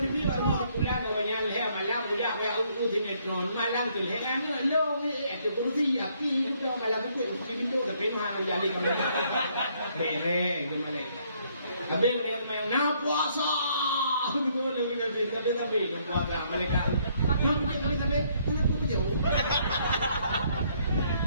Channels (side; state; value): both; inverted; correlation -0.68